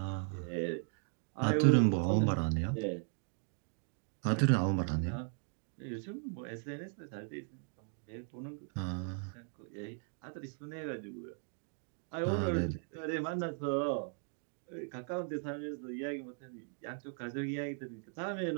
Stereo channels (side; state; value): left; silent; 53 dB below the other